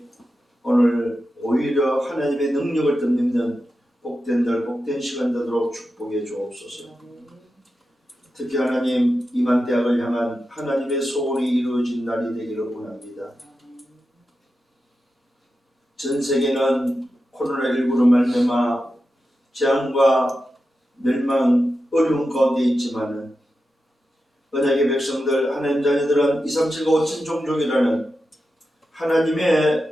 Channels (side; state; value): both; normal; correlation 0.90